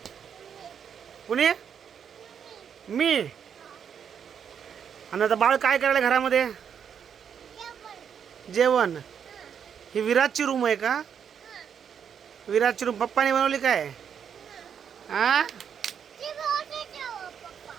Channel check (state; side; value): quieter; left; 7.8 dB